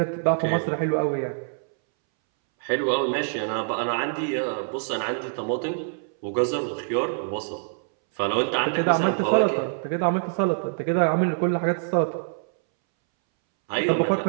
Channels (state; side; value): silent; left; 62 dB below the other